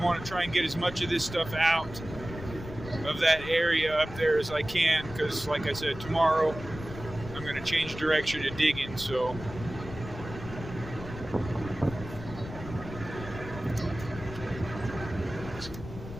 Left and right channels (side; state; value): left; noise; rumble, 11 dB below the sound